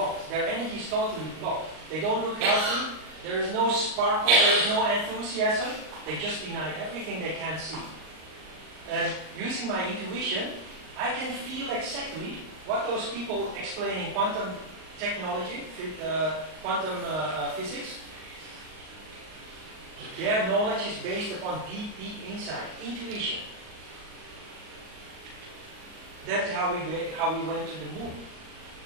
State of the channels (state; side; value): late; left; 38 ms